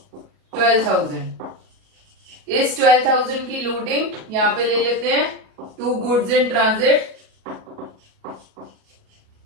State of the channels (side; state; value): left; late; 37 ms